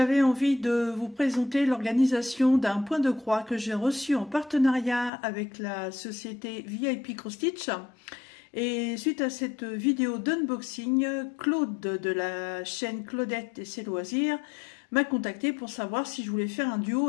envie de vous présenter l'organisation d'un point de croix que j'ai reçu en partenariat avec la société VIP Cross Stitch. Et suite à cette vidéo d'unboxing, Claude de la chaîne Claudette et ses loisirs m'a contacté pour savoir si je voulais faire un duo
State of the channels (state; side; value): drops out; right; at 5.1 s